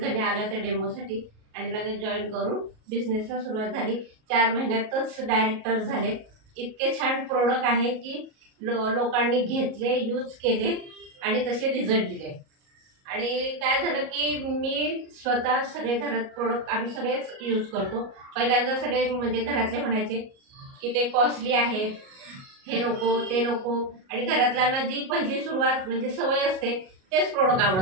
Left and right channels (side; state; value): left; late; 37 ms